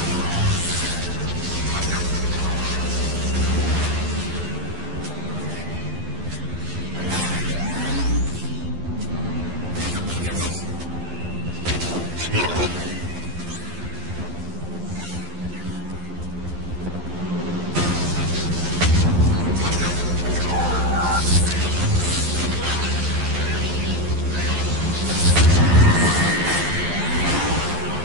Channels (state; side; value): late; left; 11 ms